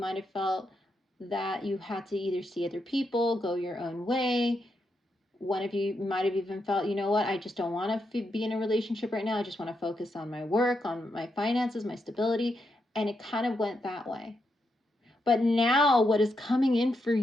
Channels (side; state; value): both; normal; correlation 0.83